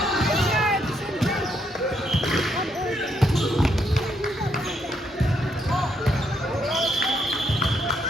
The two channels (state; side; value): normal; both; correlation 0.75